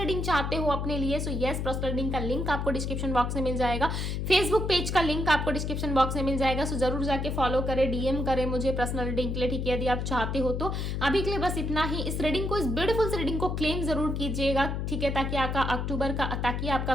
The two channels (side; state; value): left; noise; hum, 2 dB below the sound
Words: चाहते हो अपने लिए, सो यस, पर्सनल रीडिंग का लिंक आपको डिस्क्रिप्शन बॉक्स में मिल जाएगा। फेसबुक पेज का लिंक आपको डिस्क्रिप्शन बॉक्स में मिल जाएगा। सो जरूर जाके फॉलो करें, डीएम करें मुझे पर्सनल रीडिंग के लिए। ठीक है, यदि आप चाहते हो तो अभी के लिए बस इतना ही। इस रीडिंग को, इस ब्यूटीफुल से रीडिंग को क्लेम जरूर कीजिएगा। ठीक है, ताकि आपका